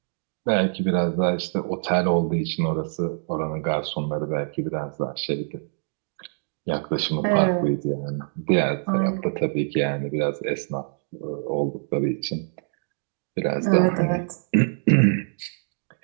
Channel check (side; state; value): left; silent; 62 dB below the other